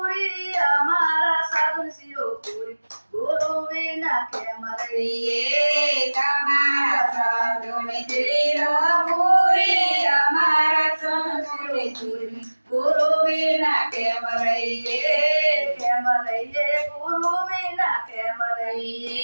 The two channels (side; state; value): both; inverted; correlation -1.00